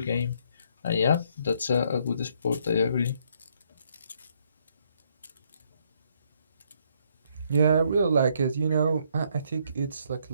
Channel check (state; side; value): inverted; both; correlation -0.70